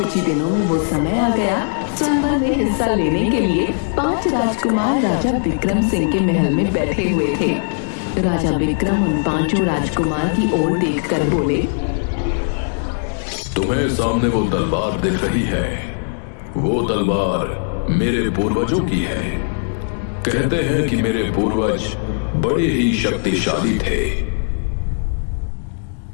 ही दिनों में वो समय आ गया। स्वयंवर में हिस्सा लेने के लिए 5 राजकुमार राजा विक्रम सिंह के महल में बैठे हुए थे। राजा विक्रम उन 5 राजकुमार की ओर देखकर बोले, तुम्हें सामने वो तलवार दिख रही है, वो तलवार मेरे पूर्वजों की है। कहते हैं कि मेरे पूर्वज बड़े ही शक्तिशाली थे।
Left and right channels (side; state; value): right; silent; digital silence